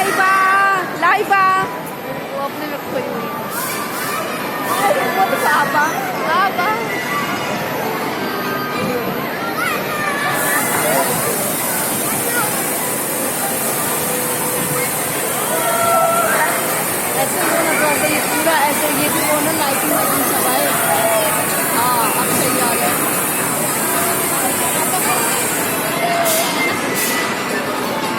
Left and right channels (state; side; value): identical; both; correlation 1.00